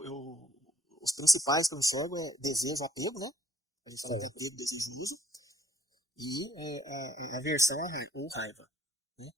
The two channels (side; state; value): both; normal; correlation 0.61